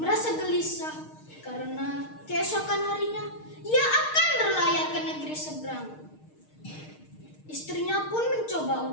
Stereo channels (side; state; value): right; late; 6.5 ms